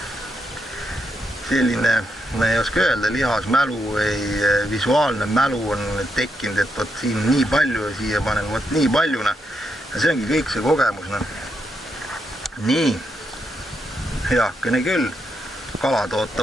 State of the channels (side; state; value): both; normal; correlation 0.81